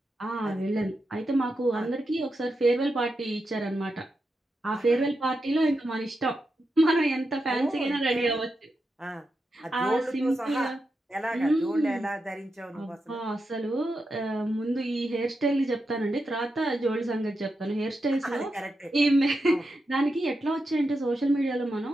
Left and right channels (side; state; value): both; normal; correlation 0.87